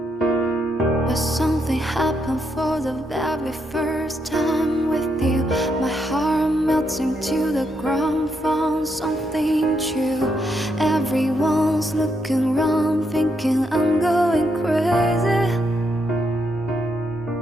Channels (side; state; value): both; normal; correlation 0.78